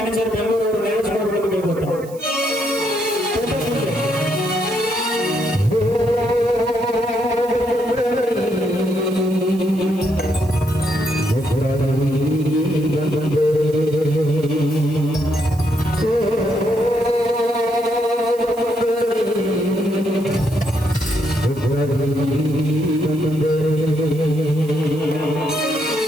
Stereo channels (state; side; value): noise; right; hiss, 22 dB below the sound